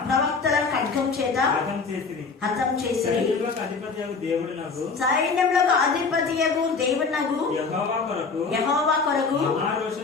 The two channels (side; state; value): right; quieter; 4.7 dB